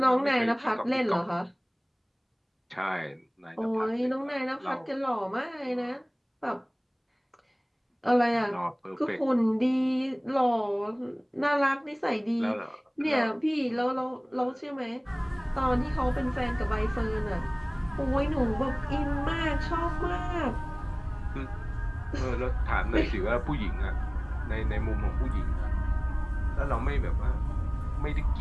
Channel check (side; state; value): both; identical; correlation 1.00